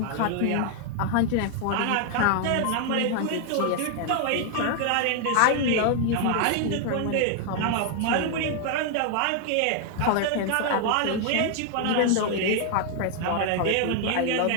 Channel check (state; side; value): different; both; correlation 0.00